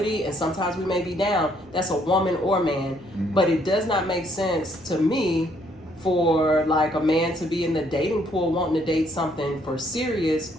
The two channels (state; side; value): normal; both; correlation 0.68